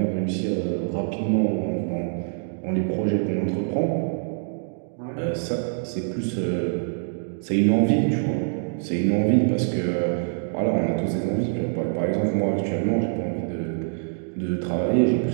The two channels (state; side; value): silent; left; digital silence